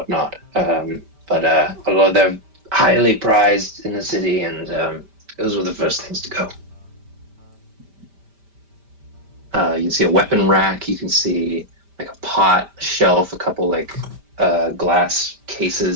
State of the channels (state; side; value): late; left; 5.1 ms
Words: But a lot of them highly prized in the city, and those were the first things to go. You can see a weapon rack. You can see like a pot, a shelf, a couple like glass